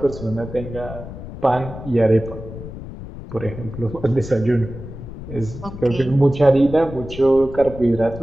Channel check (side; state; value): left; noise; rumble, 12 dB below the sound